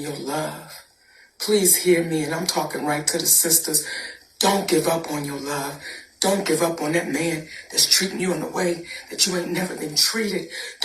love. Please hear me, and I'm talking right to the sisters. Don't give up on your love. Don't give up on that man that's treating you in a way that you ain't never been treated.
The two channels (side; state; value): both; identical; correlation 1.00